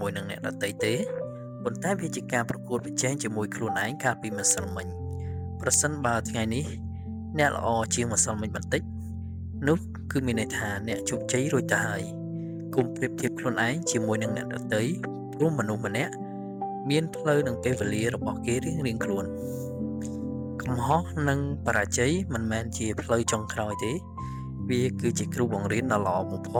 ួយនឹងអ្នកដទៃទេប៉ុន្តែវាជាការប្រកួតប្រជែងជាមួយខ្លួនឯងកាលពីម្សិលមិញប្រសិនបើថ្ងៃនេះអ្នកល្អជាងម្សិលមិញបន្តិចនោះគឺមានន័យថាអ្នកជោគជ័យរួចទៅហើយកុំប្រៀបធៀបខ្លួនឯងជាមួយនឹងអ្នកដទៃព្រោះមនុស្សម្នាក់មានផ្លូវនិងពេលវេលារបស់គេរៀងៗខ្លួនកំហុសនិងបរាជ័យមិនមែនជាផ្លូវចុងក្រោយទេវាគឺជាគ្រូបង្រៀនដ៏ល្អបំផ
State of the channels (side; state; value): both; identical; correlation 1.00